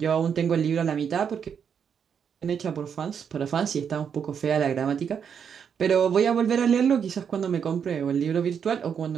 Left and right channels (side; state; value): left; quieter; 7.4 dB